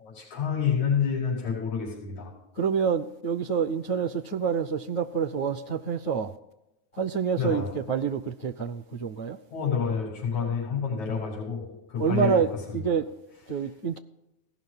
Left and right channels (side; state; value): right; late; 9.4 ms